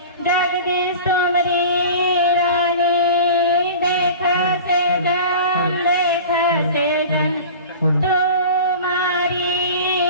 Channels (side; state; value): both; inverted; correlation -0.37